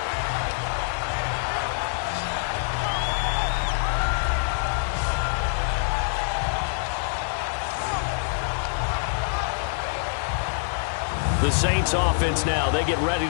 The Saints offense now, they get ready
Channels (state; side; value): silent; right; digital silence